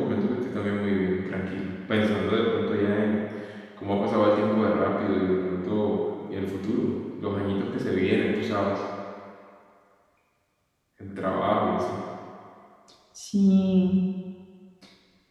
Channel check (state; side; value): identical; both; correlation 1.00